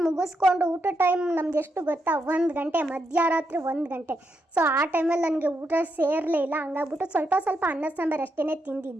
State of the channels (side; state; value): both; normal; correlation 0.81